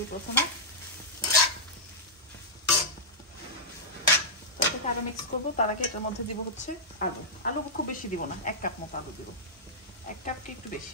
প্রথমে, তারপরে আরো মিক্স করবো। তার আগে এটার মধ্যে দিব হচ্ছে আলু খুব বেশি দিব না, 1 কাপ মতো আলু দিব। 1 কাপ কি একটু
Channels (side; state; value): both; normal; correlation -0.11